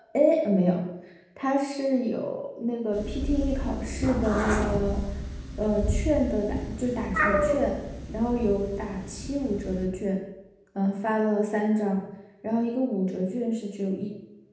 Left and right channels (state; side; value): identical; both; correlation 1.00